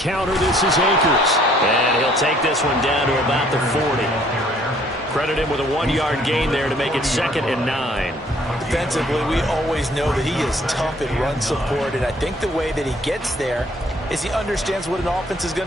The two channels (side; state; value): both; normal; correlation 0.61